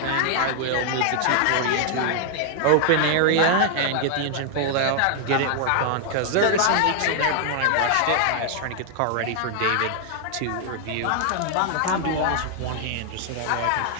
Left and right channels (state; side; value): different; both; correlation 0.00